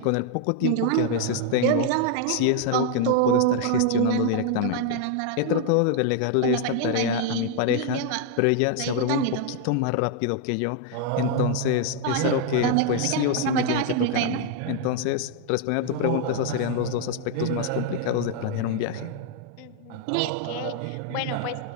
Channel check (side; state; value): both; different; correlation 0.00